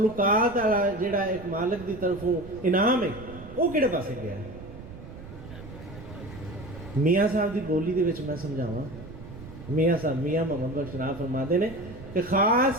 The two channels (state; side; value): noise; right; rumble, 15 dB below the sound